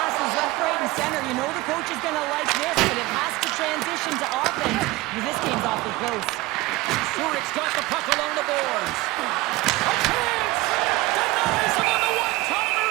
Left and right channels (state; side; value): quieter; left; 19.9 dB